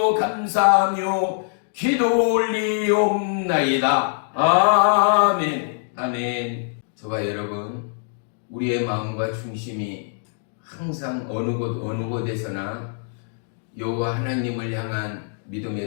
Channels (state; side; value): silent; right; digital silence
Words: 감사하며 기도 올리옵나이다. 아멘. 아멘. 저와 여러분, 우리의 마음과 중심이 항상 어느 곳에서나 여호와 하나님을 향한